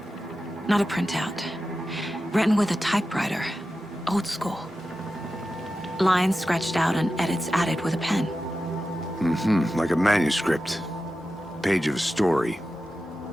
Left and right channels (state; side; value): normal; both; correlation 0.92